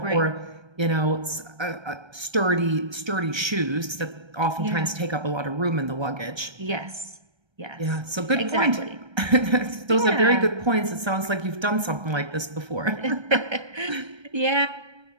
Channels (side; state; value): left; late; 1.3 ms